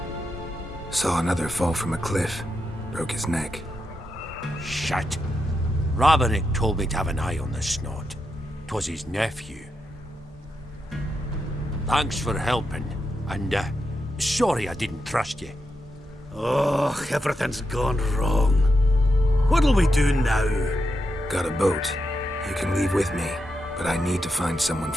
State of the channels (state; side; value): normal; both; correlation 0.85